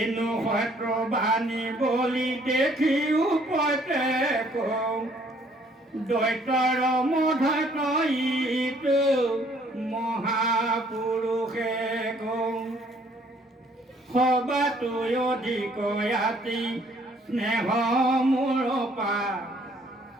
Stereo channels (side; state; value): both; normal; correlation 0.62